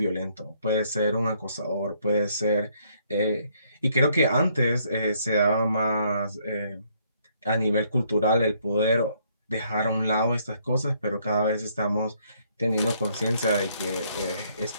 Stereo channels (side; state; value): both; inverted; correlation -0.68